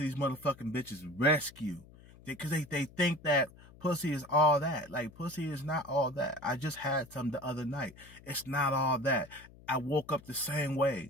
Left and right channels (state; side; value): noise; left; hum, 22 dB below the sound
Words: these motherfucking bitches rescue. Because they think that pussy is all that. Like, pussy is not all that. I just had some the other night. It's not all that. I woke up the same